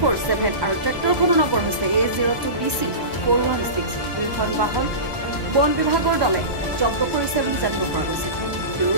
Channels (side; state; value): left; late; 1.1 ms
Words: আৰু ট্ৰেক্টৰখনৰ নম্বৰ হৈছে A02BC 416। দুইখন বাহন বন বিভাগৰ দলে জব্দ কৰিছে বুলি জানিব পৰা গৈছে। Bureau